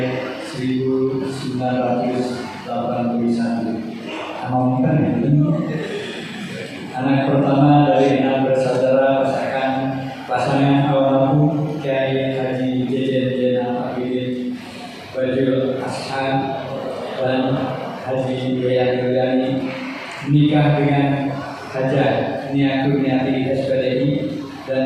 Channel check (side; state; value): both; identical; correlation 1.00